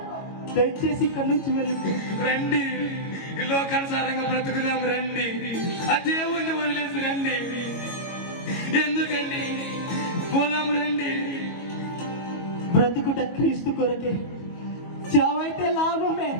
దయచేసి ఇక్కడి నుంచి వెళ్ళిపో. రండి, ఈ లోకానుసారంగా బ్రతుకుదాం. రండి, ఆ దేవుణ్ణి వదిలేసి రండి. ఎందుకండి? పోదాం రండి. బ్రతుకుట క్రీస్తు కొరకే, చావైతే లాభమే.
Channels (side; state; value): right; late; 22 ms